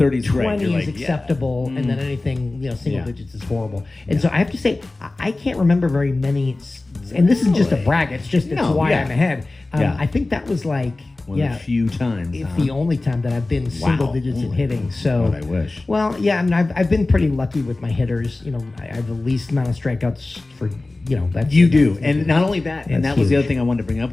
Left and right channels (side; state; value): right; quieter; 3.1 dB